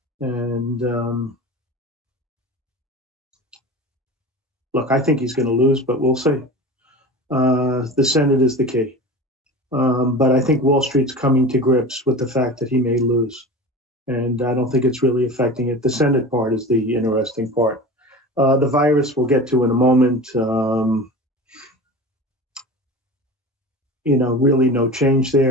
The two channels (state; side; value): normal; both; correlation 0.33